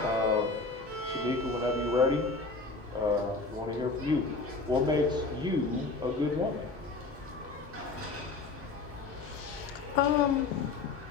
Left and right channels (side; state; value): right; quieter; 3.8 dB